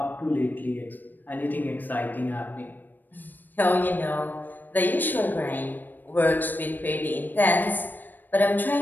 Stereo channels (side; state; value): right; late; 0.090 ms